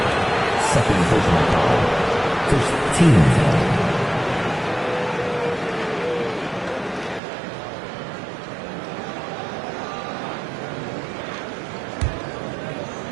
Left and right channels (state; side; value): drops out; left; at 7.2 s